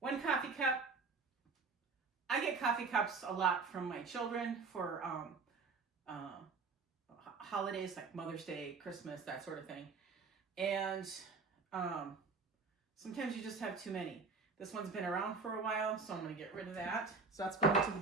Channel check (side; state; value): left; quieter; 4.5 dB